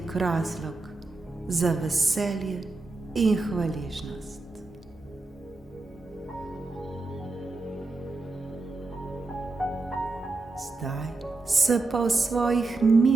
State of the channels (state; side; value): quieter; left; 3.3 dB